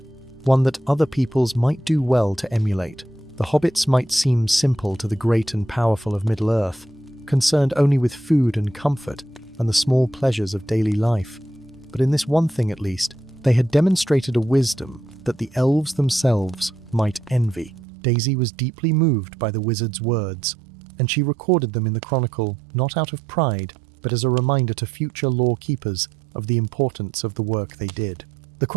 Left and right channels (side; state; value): left; drops out; at 17.9 s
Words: one that other peoples might do well to emulate. The hobbits might seem simple to the great and powerful of Middle-earth, concerned only with food and comfort and the small pleasures of daily life. But in this one thing at least, they had demonstrated a wisdom that the elves themselves might envy. Daisy was deeply moved by the wizard's words, and she recorded them in the chronicle not out of pride, but as a reminder to future lore-keepers of the importance of the work they did. The